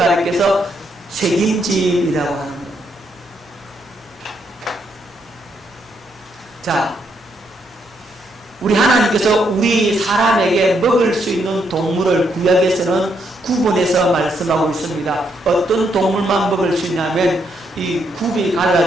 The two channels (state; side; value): normal; both; correlation 0.76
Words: 책임질이라고 하는 거예요. 자, 우리 하나님께서 우리 사람에게 먹을 수 있는 동물을 구약에서는 구분해서 말씀하고 있습니다. 어떤 동물만 먹을 수 있냐면 이 굽이